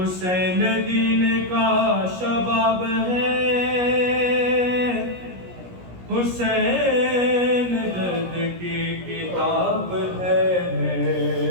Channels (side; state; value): left; late; 17 ms